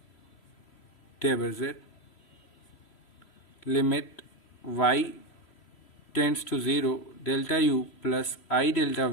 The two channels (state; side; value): late; right; 3.1 ms